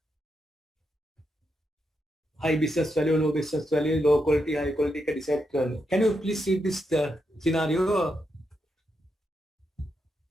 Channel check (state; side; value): normal; both; correlation 0.83